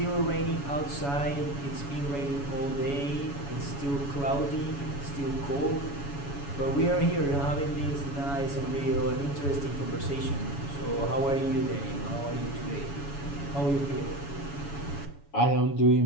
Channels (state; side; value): late; right; 7.1 ms